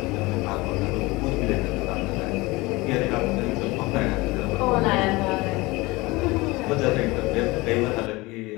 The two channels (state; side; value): quieter; right; 22.5 dB